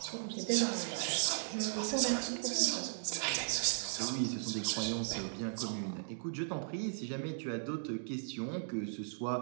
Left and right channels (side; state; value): left; silent; digital silence